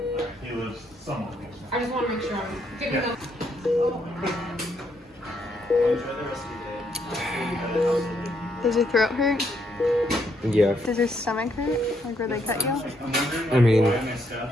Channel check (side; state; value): both; normal; correlation 0.74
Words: he lives somewhat. I just want to make sure I'm good enough. Does your throat hurt? Yeah. Does your stomach hurt? Like where they cut you? I mean,